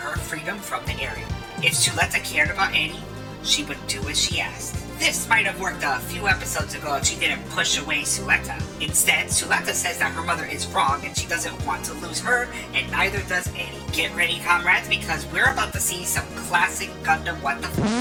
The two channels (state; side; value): identical; both; correlation 1.00